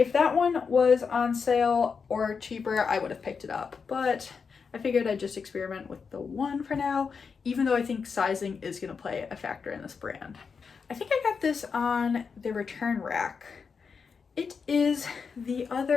that one was on sale or cheaper, I would have picked it up. But I figured I'd just experiment with the one for now, even though I think sizing is going to play a factor in this brand. I think I got this on the return rack. It is the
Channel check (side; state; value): right; quieter; 5.6 dB